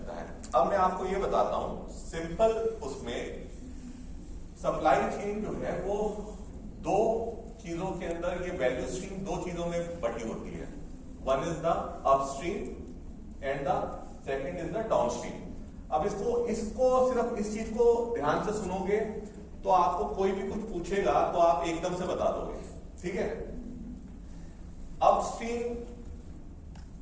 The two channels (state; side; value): identical; both; correlation 1.00